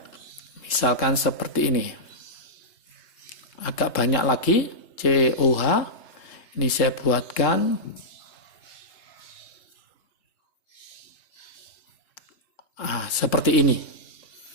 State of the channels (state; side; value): late; right; 3.7 ms